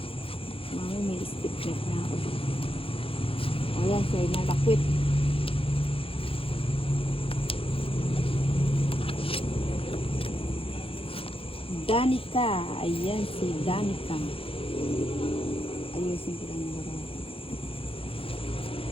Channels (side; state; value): right; late; 0.27 ms